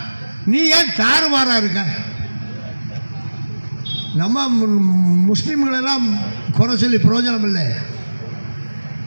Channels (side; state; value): both; inverted; correlation -1.00